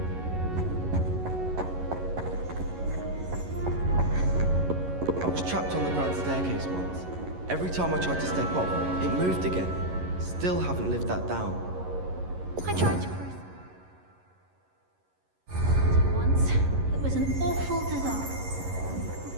I was trapped on the grand staircase once. Every time I tried to step off, it moved again. Still haven't lived that down. I tried to once. It was an awful disaster. I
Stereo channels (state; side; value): late; left; 11 ms